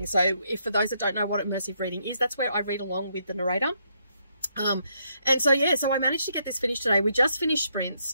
So if for those that don't know what immersive reading is, that's where I read along with the narrator. And so yeah, so I managed to get this finished today. We just finished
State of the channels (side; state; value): both; inverted; correlation -0.75